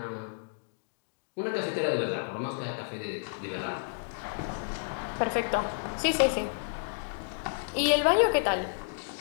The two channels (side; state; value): right; silent; digital silence